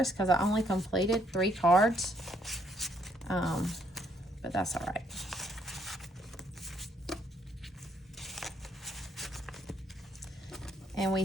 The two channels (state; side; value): normal; both; correlation 0.70